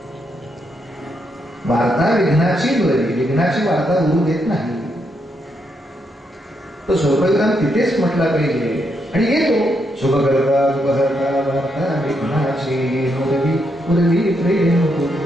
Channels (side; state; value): both; normal; correlation 0.79